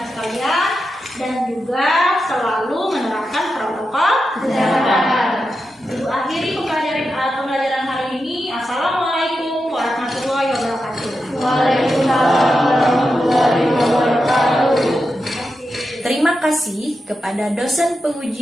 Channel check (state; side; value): normal; both; correlation 0.89